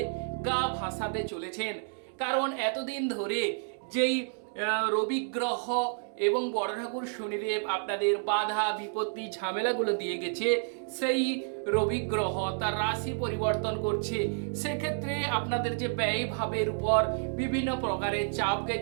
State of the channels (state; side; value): silent; left; digital silence